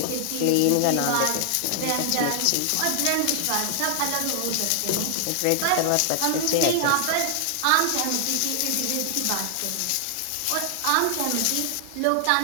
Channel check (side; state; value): both; different; correlation 0.00